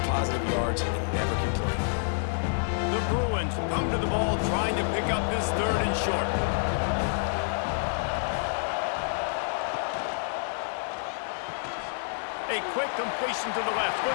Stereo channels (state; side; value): silent; right; 59 dB below the other